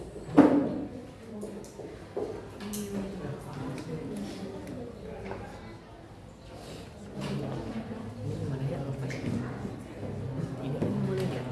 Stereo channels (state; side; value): identical; both; correlation 1.00